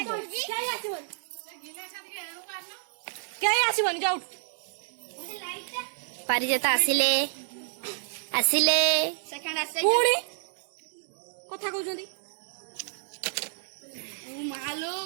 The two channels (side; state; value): left; silent; digital silence